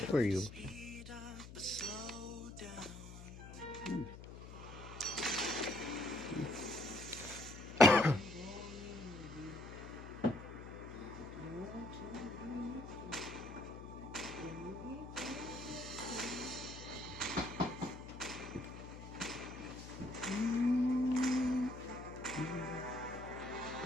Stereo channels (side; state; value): left; noise; hum, 13 dB below the sound